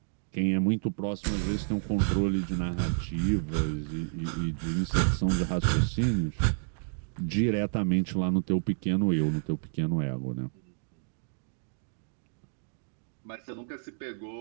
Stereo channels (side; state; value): left; silent; digital silence